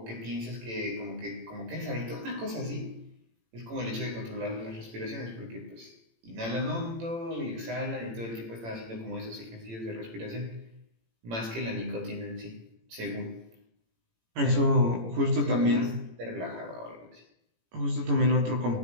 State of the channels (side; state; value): left; late; 18 ms